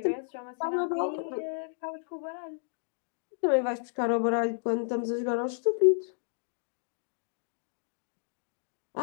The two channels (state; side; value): silent; right; digital silence